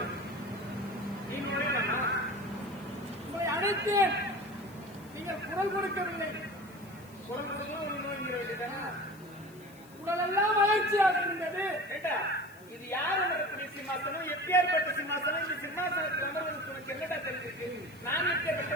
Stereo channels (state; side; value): noise; left; hiss, 25 dB below the sound